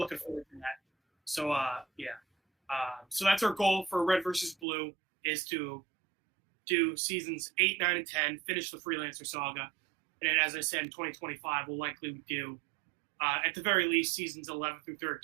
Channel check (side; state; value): left; drops out; at 4.7 s